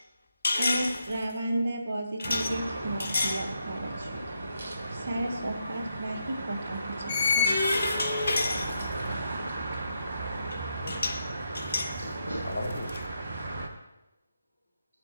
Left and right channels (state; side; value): inverted; both; correlation -0.81